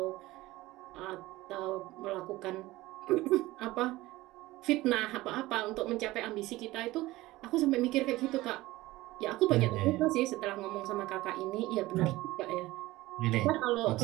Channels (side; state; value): left; quieter; 18.4 dB